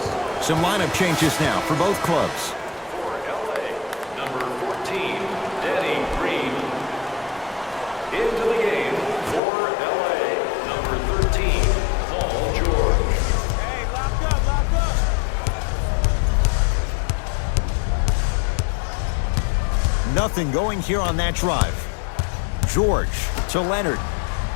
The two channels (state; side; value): drops out; right; at 9.4 s